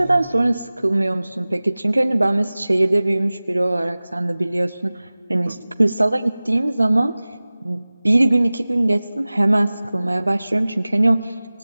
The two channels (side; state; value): both; inverted; correlation -0.98